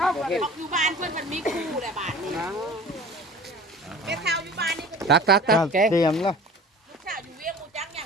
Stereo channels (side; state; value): both; normal; correlation 0.42